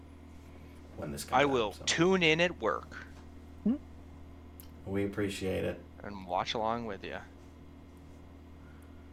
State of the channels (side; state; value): both; identical; correlation 1.00